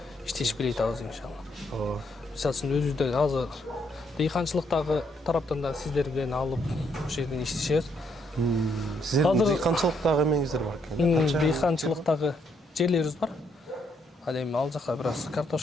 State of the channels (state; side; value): normal; both; correlation 0.73